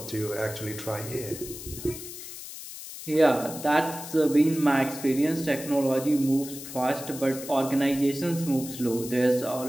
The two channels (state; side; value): noise; left; hiss, 11 dB below the sound